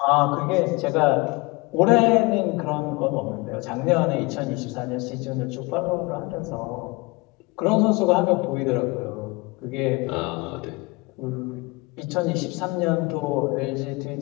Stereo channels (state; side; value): quieter; right; 25.0 dB